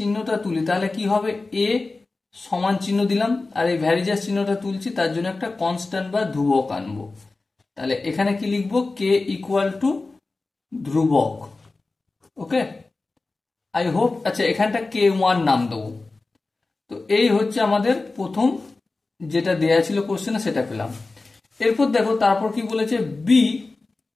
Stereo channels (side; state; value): right; quieter; 3.5 dB